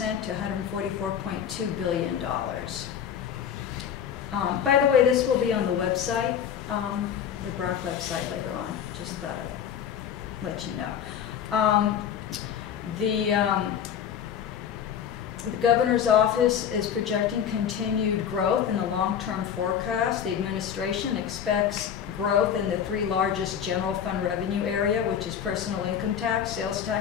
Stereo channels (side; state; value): right; quieter; 8.6 dB